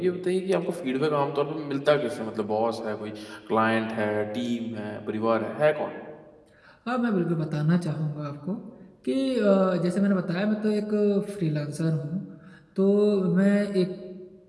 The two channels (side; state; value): both; identical; correlation 1.00